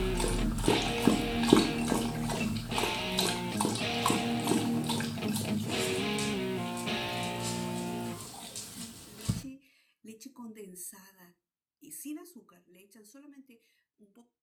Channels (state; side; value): identical; both; correlation 1.00